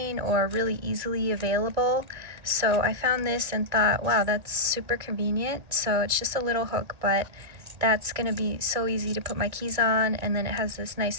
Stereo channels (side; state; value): left; late; 2.3 ms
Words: or really easily available. So I found this and thought, wow, that's super convenient. So it's just a little hook, but that's gonna be so easy to put my keys on, and then it has this